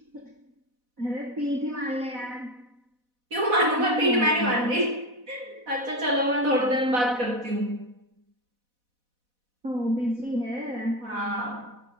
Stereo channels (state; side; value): late; left; 4.1 ms